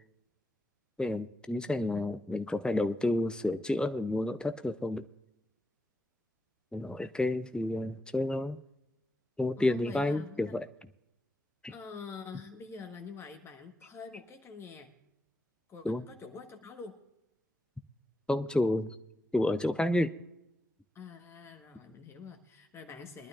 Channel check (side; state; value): both; normal; correlation 0.89